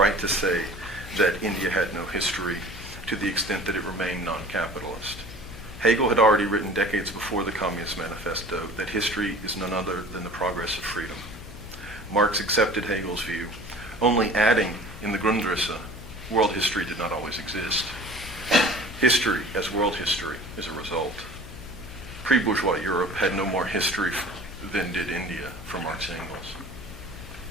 to say that India had no history to the extent that it remained non-capitalist. Hegel had already written decades before the Communist Manifesto that history is none other than the progress of freedom. Marx accepted Hegel's view, only adding in the Grundrisse, world history did not always exist. History, as world history, is a result. Pre-bourgeois Europe had no more history than did India for Marx and Engels.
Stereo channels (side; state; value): left; noise; hum, 14 dB below the sound